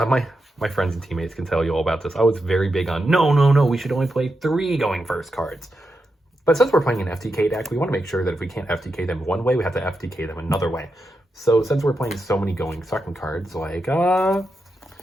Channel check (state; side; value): normal; both; correlation 0.87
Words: friends and teammates can tell you all about this. I was very big on, no, we should only play 3 going first cards. But since we're playing an FTK deck, we want to make sure that if we can't FTK them one way, we have to FTK them another way. So since we're playing so many going second cards, like,